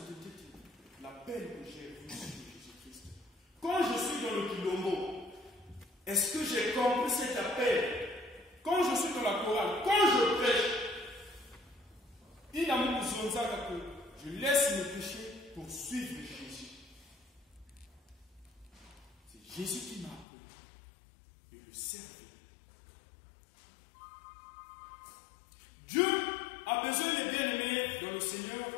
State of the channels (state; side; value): drops out; right; at 20.2 s